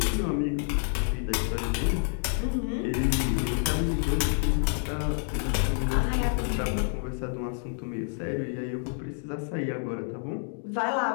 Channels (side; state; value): right; silent; 59 dB below the other